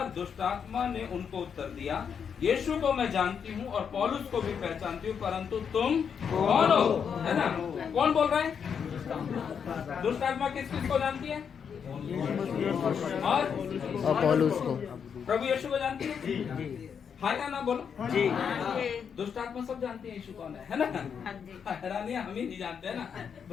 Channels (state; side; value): quieter; right; 7.1 dB